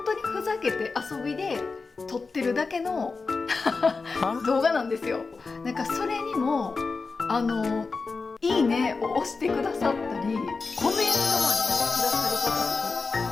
当にふざけて遊びで撮ってるだけの動画なんですよ。なんかそれにもいいねを押してくださったり、コメントまでくださる方と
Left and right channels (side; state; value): right; quieter; 4.3 dB